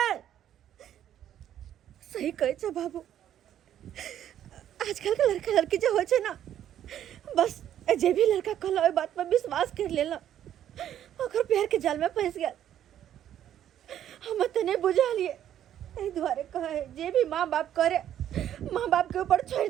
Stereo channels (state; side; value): quieter; left; 10.8 dB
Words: सही कहे छे बाबू। आजकल के लड़का लड़की जो होय छे ना बस जे भी लड़का कहला ओय बात पर विश्वास कर लेला ओकर प्यार के जाल में फंस गया। हम त नहीं बुझा लिए एहि द्वारे कहे जे भी माँ बाप करे माँ बाप के ऊपर छोड़